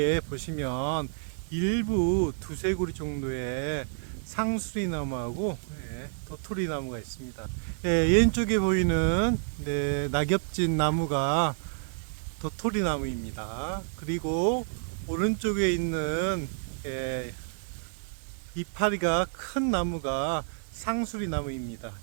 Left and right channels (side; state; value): left; silent; 58 dB below the other